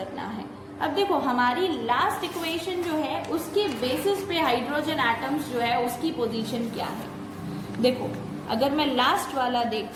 है। अब देखो हमारी लास्ट इक्वेशन जो है उसके बेसिस पे हाइड्रोजन एटम्स जो है उसकी पोजीशन क्या है। देखो अगर मैं लास्ट वाला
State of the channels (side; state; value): both; identical; correlation 1.00